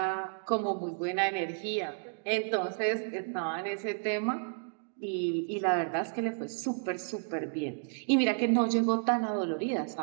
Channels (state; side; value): silent; left; digital silence